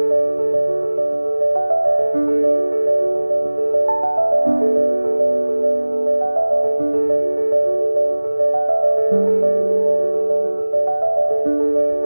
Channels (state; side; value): inverted; both; correlation -1.00